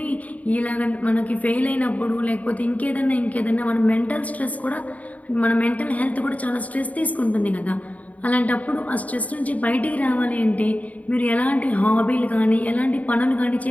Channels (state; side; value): late; right; 0.071 ms